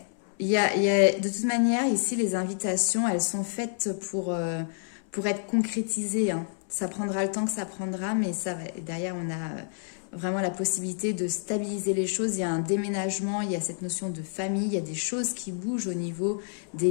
Il y a, de toute manière, ici, les invitations, elles sont faites pour être concrétisées. Hein. Ça prendra le temps que ça prendra, mais ça va. Derrière, on a vraiment la possibilité de stabiliser les choses. Il y a un déménagement, il y a cette notion de famille, il y a des choses qui bougent au niveau des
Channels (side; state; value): right; silent; 56 dB below the other